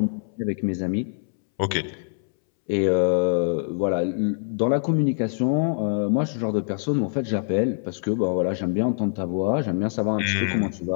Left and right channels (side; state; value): right; silent; 62 dB below the other